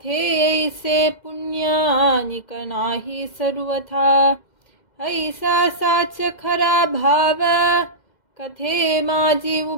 पुण्यानिक नाही सर्वथा. ऐसा साच खरा भाव, कथे माझी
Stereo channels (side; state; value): right; late; 2.0 ms